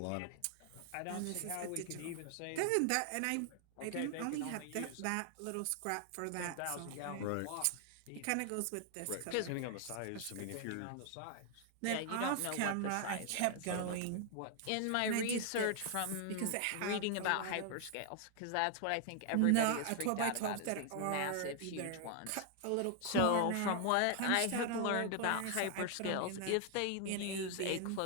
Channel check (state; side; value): different; both; correlation 0.00